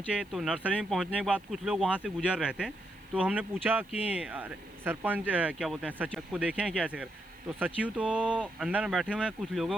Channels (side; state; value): left; noise; hiss, 29 dB below the sound